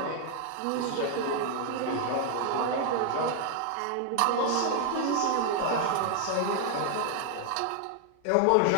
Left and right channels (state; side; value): different; both; correlation 0.00